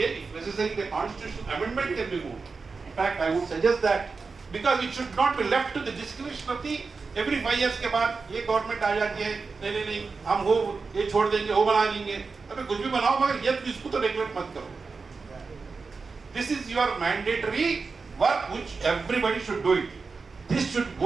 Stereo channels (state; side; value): quieter; left; 4.5 dB